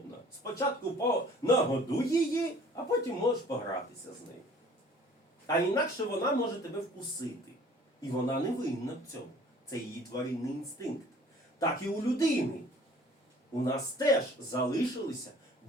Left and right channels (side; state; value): both; normal; correlation 0.52